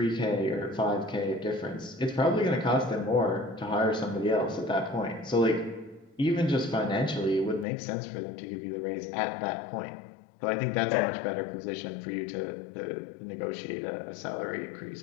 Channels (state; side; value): drops out; right; at 7.7 s